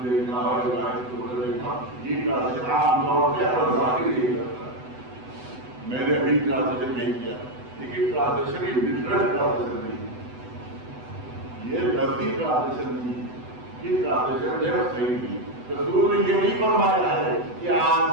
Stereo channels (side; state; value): left; late; 8.0 ms